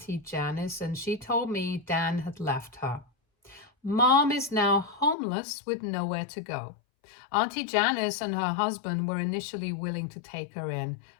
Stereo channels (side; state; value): right; drops out; at 5.2 s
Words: Janice, and she told me Dan had left her. Mom is now homeless with nowhere to go. Auntie Janice and her husband were initially willing to take her in,